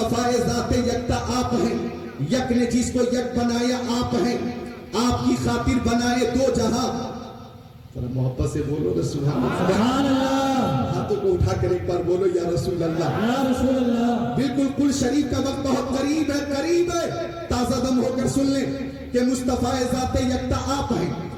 ذات یکتا آپ ہیں، یک نے جس کو یک بنایا آپ ہیں، آپ کی خاطر بنائے دو جہاں۔ محبت سے بولو رسول اللہ، ہاتھوں کو اٹھا کر ایک بار بولو یا رسول اللہ، یا رسول اللہ۔ بالکل کل شریف کا وقت بہت قریب ہے، قریب ہے، تازہ دم ہو کر سن لیں کہ مصطفیٰ ذات یکتا آپ ہیں،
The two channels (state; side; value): identical; both; correlation 1.00